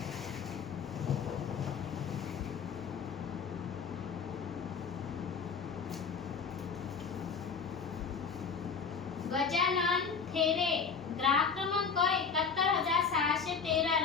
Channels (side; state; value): right; quieter; 5.8 dB